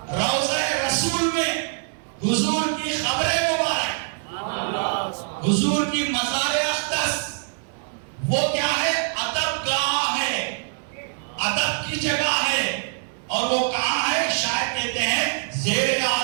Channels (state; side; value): silent; left; digital silence